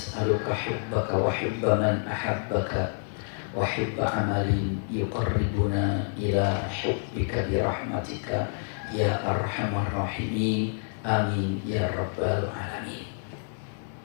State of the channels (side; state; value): right; silent; digital silence